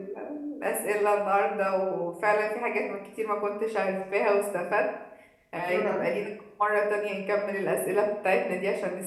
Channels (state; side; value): identical; both; correlation 1.00